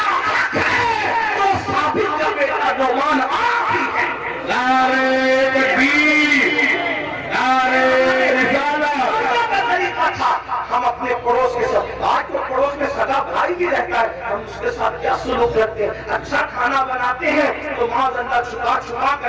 حق ہے تو ثابت کا بیٹا نعمان آپ ہی ہے۔ نعرہ تکبیر، نعرہ رسالت کا طریقہ تھا۔ ہم اپنے پڑوس کے ساتھ، آج تو پڑوس میں سگا بھائی بھی رہتا ہے، ہم اس کے ساتھ کیا سلوک رکھتے ہیں؟ اچھا کھانا بناتے ہیں تو معاذ اللہ چھپا چھپا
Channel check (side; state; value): both; identical; correlation 1.00